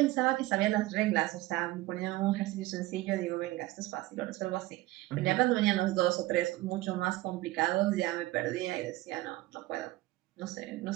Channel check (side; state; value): left; quieter; 18.1 dB